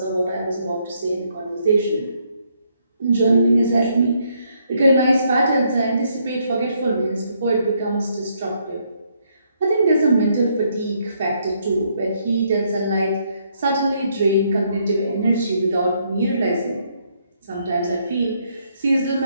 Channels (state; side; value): inverted; both; correlation -0.72